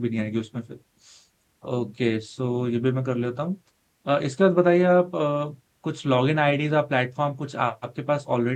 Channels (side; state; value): both; identical; correlation 1.00